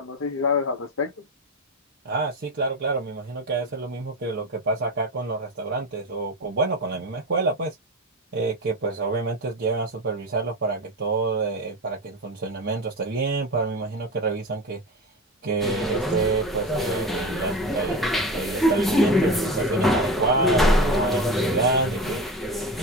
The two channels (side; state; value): both; normal; correlation 0.25